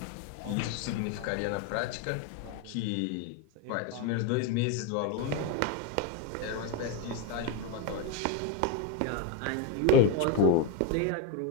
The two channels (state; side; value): different; both; correlation 0.02